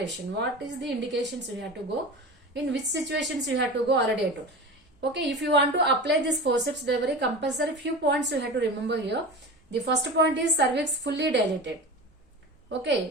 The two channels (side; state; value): both; normal; correlation 0.30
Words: What is the indications we have to go? In which situations you have to go? Already I told. Okay, if you want to apply this forceps delivery, compulsory few points you have to remember here. The first point is cervix fully dilated.